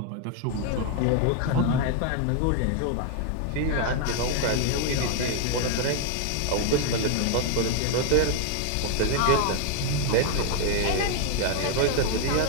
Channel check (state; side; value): different; both; correlation 0.00